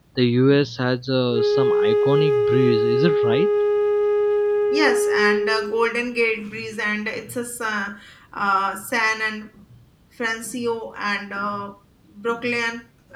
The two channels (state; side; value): identical; both; correlation 1.00